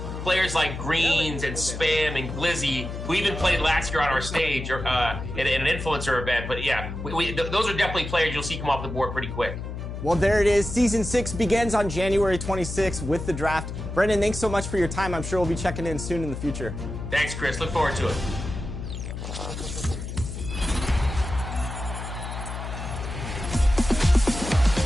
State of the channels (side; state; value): left; noise; hum, 7 dB below the sound